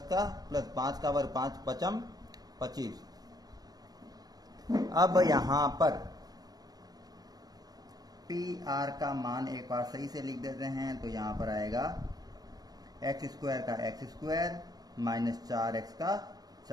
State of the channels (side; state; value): left; late; 0.19 ms